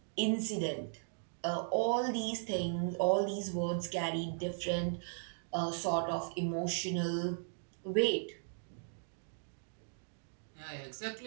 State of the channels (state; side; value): silent; left; digital silence